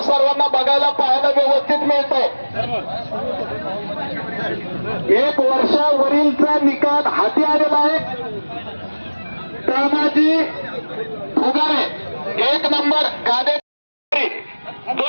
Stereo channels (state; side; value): inverted; both; correlation -1.00